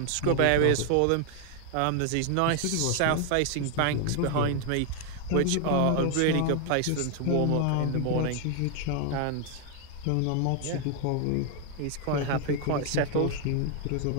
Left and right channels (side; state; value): both; different; correlation 0.00